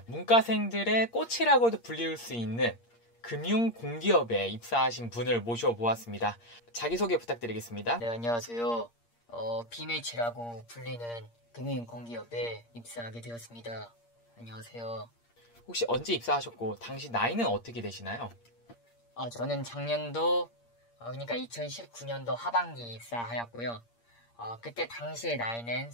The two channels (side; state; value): right; late; 8.6 ms